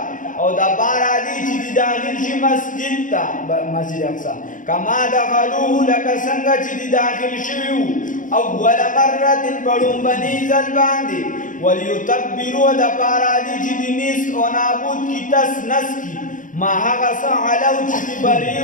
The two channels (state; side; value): late; right; 0.38 ms